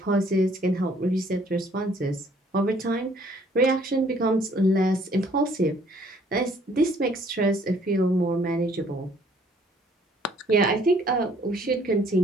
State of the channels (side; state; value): both; normal; correlation 0.61